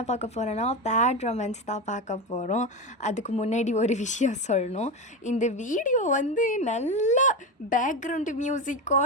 பார்க்க போகிறோன்னா பேட் ரொமான்ஸ் தான் பார்க்க போகிறோம். அதுக்கு முன்னாடி ஒரு விஷயம் சொல்லணும். இந்த வீடியோ நல்லா பேக்ரவுண்டு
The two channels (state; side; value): normal; both; correlation 0.18